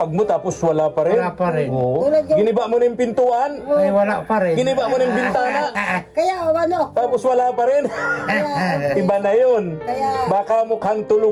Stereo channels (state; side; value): identical; both; correlation 1.00